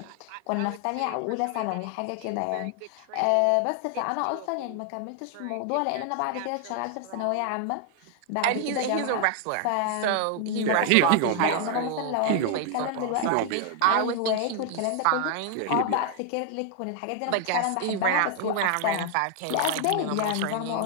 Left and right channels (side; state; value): both; different; correlation 0.00